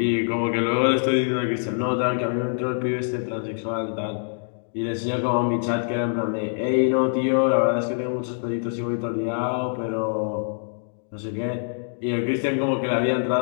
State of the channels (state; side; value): silent; right; digital silence